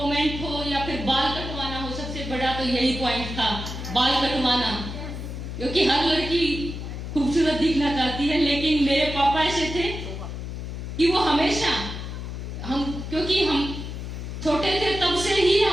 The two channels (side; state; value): left; noise; hum, 7 dB below the sound